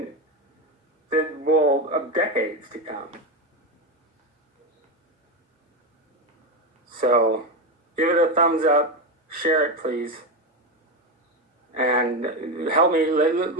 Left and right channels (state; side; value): normal; both; correlation 0.13